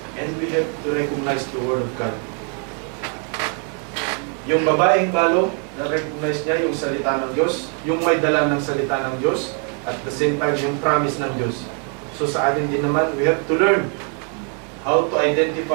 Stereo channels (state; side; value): quieter; left; 37.3 dB